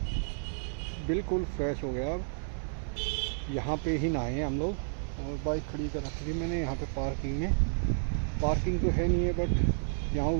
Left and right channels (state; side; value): silent; left; digital silence